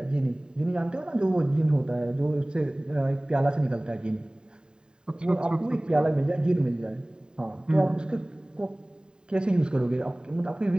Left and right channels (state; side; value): late; left; 0.048 ms